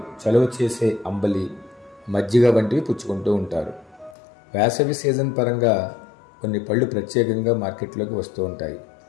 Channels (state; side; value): drops out; right; at 4.2 s